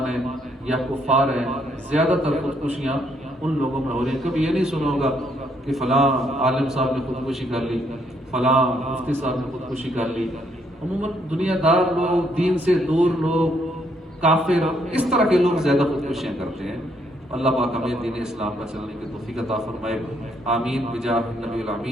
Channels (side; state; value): both; normal; correlation 0.71